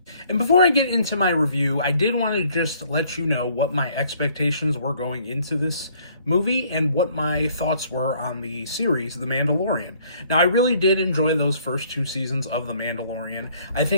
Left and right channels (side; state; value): both; inverted; correlation -0.61